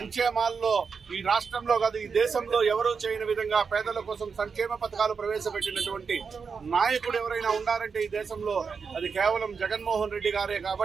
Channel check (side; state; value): left; quieter; 5.6 dB